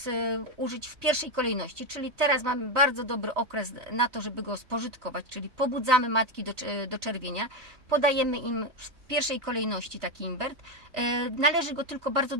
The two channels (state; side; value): late; left; 3.2 ms